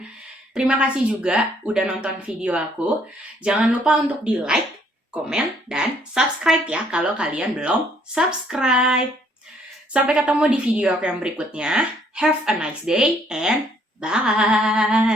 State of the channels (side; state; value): both; normal; correlation 0.65